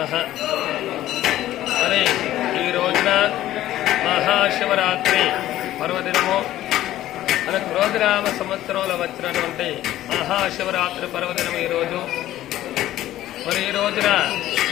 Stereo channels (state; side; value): quieter; right; 14.0 dB